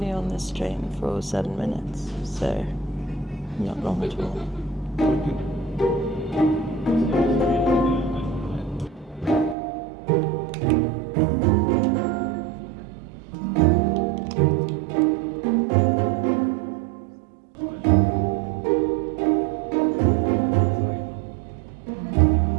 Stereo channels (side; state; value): left; drops out; at 9.6 s